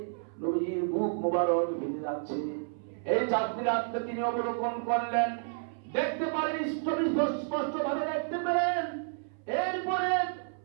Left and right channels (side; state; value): left; silent; 57 dB below the other